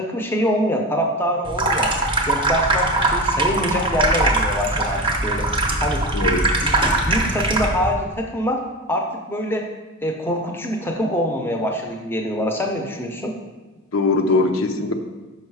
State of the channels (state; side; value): normal; both; correlation 0.25